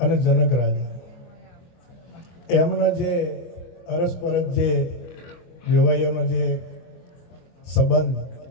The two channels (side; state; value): right; late; 23 ms